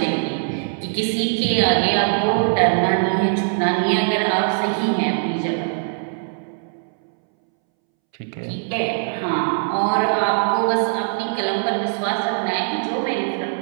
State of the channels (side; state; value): left; silent; 65 dB below the other